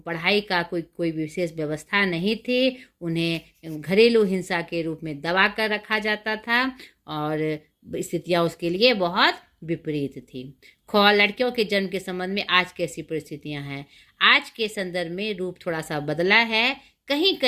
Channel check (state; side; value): identical; both; correlation 1.00